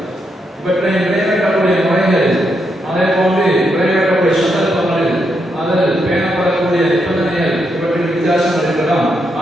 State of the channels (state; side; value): normal; both; correlation 0.81